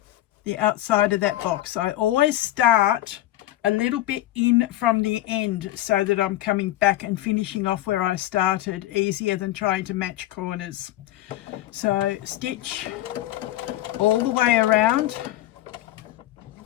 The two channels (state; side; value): quieter; right; 14.9 dB